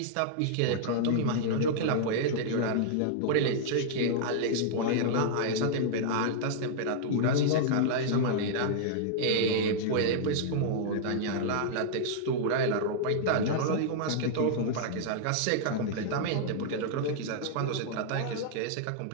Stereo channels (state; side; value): different; both; correlation -0.01